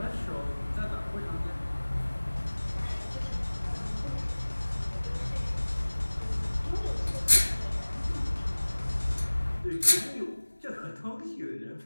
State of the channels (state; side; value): inverted; both; correlation -1.00